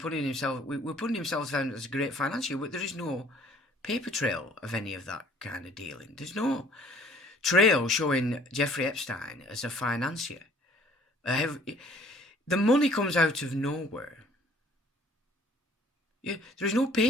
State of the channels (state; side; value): normal; both; correlation 0.56